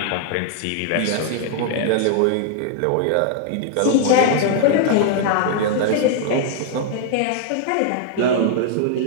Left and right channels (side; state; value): both; different; correlation 0.00